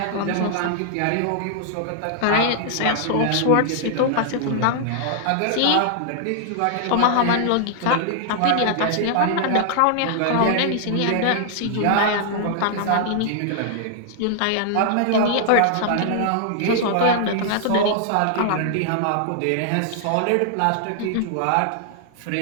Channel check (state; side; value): different; both; correlation -0.01